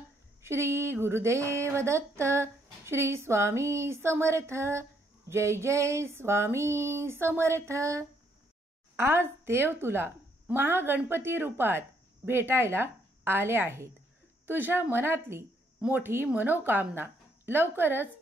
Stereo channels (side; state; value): both; normal; correlation 0.71